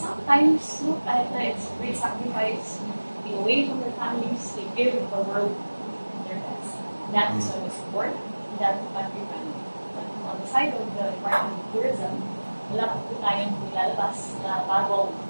no? Kahit na it's great sacrifice, being away from their families, they give the world their best. That is why we support that country brand. But on the side of the Department of Tourism, wala po tayong nilalabas na bagong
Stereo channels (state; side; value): inverted; both; correlation -1.00